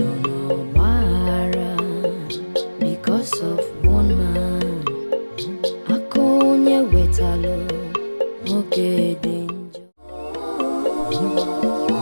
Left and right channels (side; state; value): both; inverted; correlation -1.00